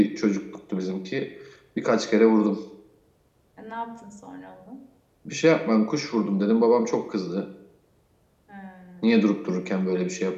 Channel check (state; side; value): identical; both; correlation 1.00